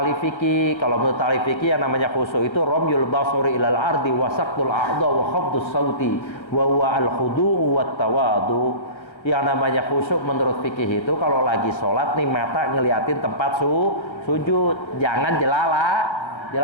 fikih? Kalau menurut ahli fikih yang namanya khusyuk itu ramyul basari ilal ardi wa saqtul a'dha wa khafdus sauti wa huwa al khudu'u wat tawadu. Yang namanya khusyuk menurut fikih itu kalau lagi sholat nih mata ngeliatin tempat sujud, jangan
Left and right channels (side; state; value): right; late; 1.4 ms